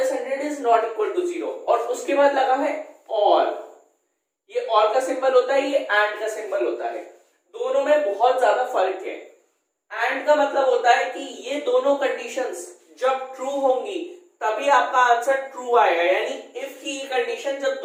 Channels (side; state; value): both; identical; correlation 1.00